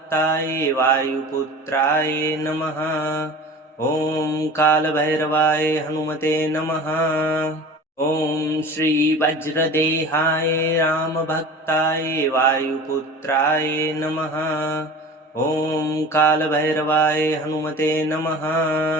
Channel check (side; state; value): both; normal; correlation 0.38